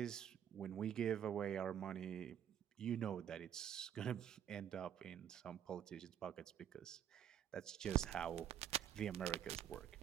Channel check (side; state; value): left; quieter; 9.7 dB